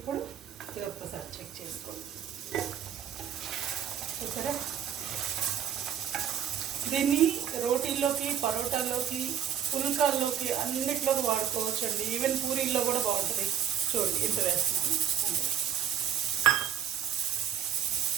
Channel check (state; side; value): quieter; left; 9.2 dB